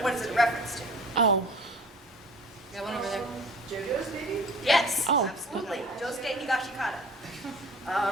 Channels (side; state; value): both; normal; correlation 0.46